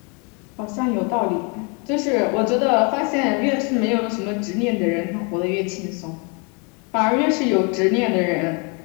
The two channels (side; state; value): right; quieter; 33.8 dB